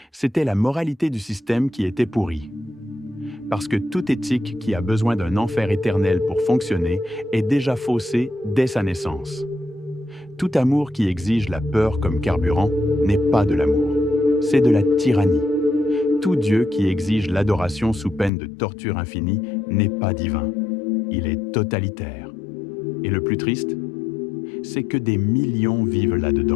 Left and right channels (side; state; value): right; drops out; at 18.3 s